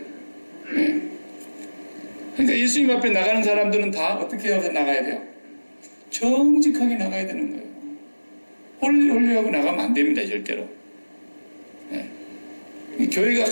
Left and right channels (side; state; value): both; inverted; correlation -1.00